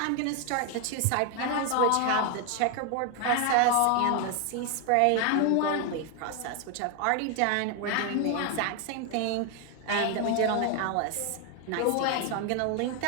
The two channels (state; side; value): different; both; correlation 0.01